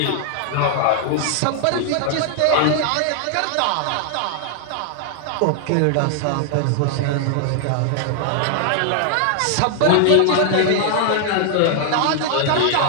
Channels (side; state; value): both; different; correlation 0.00